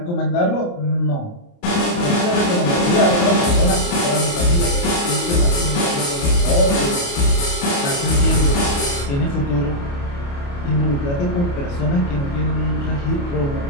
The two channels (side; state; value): right; late; 29 ms